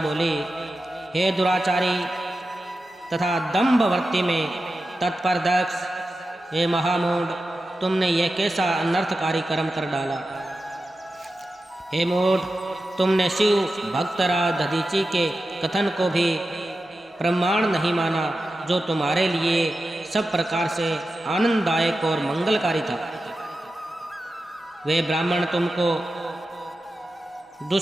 बोली, हे दुराचारी तथा दंभवर्ती में तत्पर दक्ष, हे महामूढ़, तुमने यह कैसा अनर्थकारी कर्म कर डाला। हे मूढ़, तुमने शिव भक्तराज दधीची के कथन को भी प्रमाण नहीं माना, जो तुम्हारे लिए सब प्रकार से आनंददायक और मंगलकारी था। वे ब्राह्मण तुमको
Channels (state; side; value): normal; both; correlation 0.92